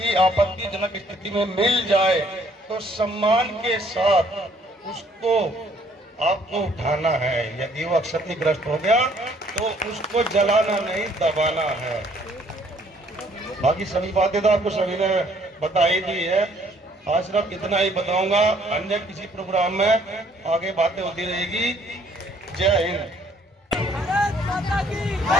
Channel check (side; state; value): both; normal; correlation 0.63